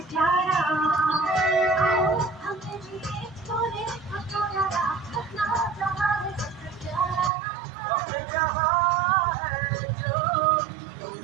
प्यारा। आओ हमने जो बोले अब तो यारा अपना जहाँ है सबसे प्यारा। हमने कहा है जो तुम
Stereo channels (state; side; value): drops out; left; at 7.3 s